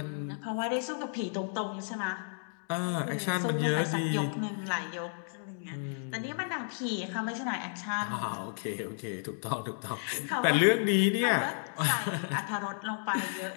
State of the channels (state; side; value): silent; right; digital silence